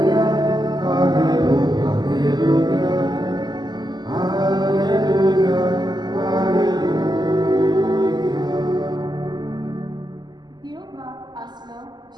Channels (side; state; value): left; late; 0.21 ms